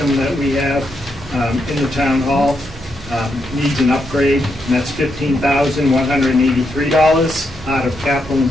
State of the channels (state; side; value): normal; both; correlation 0.81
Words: that we have in the town hall. Needs an upgrade, and that's $15,183 out of capital